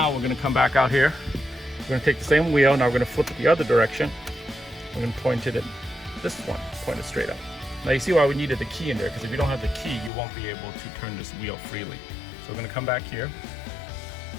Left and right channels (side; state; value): right; drops out; at 10.1 s